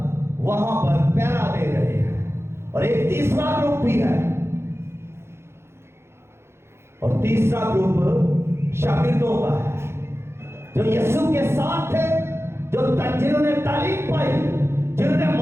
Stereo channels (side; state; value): left; late; 0.12 ms